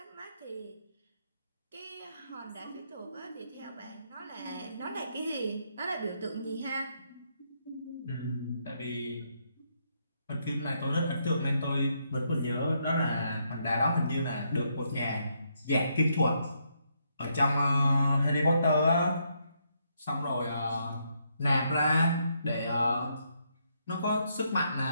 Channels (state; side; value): inverted; both; correlation -0.76